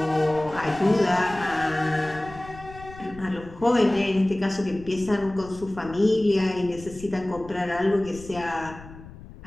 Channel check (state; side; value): noise; left; rumble, 17 dB below the sound